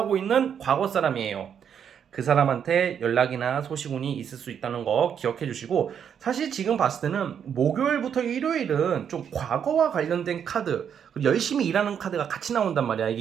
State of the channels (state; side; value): quieter; left; 8.1 dB